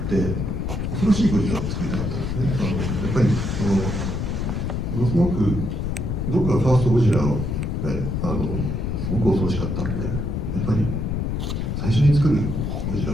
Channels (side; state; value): left; noise; rumble, 1 dB below the sound